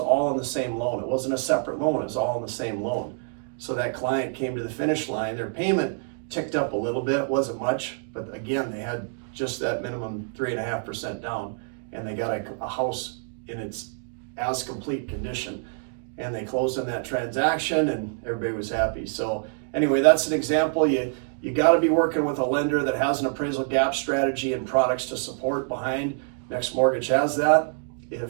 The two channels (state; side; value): silent; left; 61 dB below the other